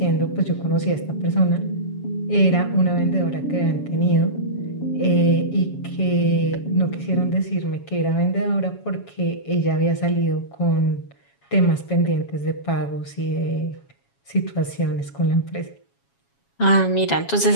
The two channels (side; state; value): right; late; 7.2 ms